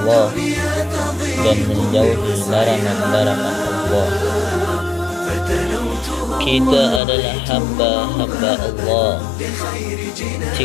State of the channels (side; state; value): right; drops out; at 7.0 s